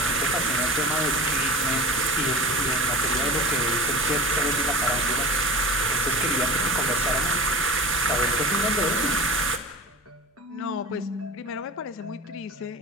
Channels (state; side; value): normal; both; correlation 0.34